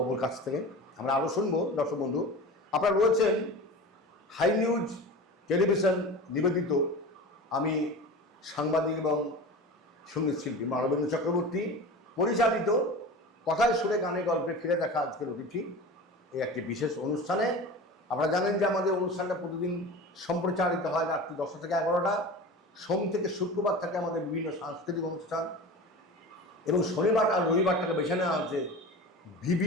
কাছ থেকে। আমরা আরও শুনবো। দর্শক বন্ধু, আপনারা রয়েছেন হাই নিউজ টেলিভিশন নিবেদিত, আমি সাংবাদিক এবং সঙ্গীত শিল্পী মানবেন্দ্র চক্রবর্তী পরিচালিত কথায় সুরে গানে গল্পে ফিরে দেখা আজকের অতিথি এই একটি বিশেষ অনুষ্ঠানে। আপনারা জানেন যে আমাদের অনুষ্ঠানটা প্রতিদিন সম্প্রচারিত হয় রাত্রি 10টা থেকে 11টা। সোম থেকে শুক্রবার থাকে আমাদের বিভিন্ন সাংস্কৃতিক অনুষ্ঠান, এবং শনিবার আর রবিবারটাকে বেছে নেওয়া হচ্ছে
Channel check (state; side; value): normal; both; correlation 0.33